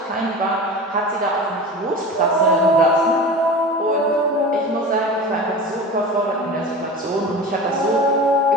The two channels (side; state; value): both; normal; correlation 0.33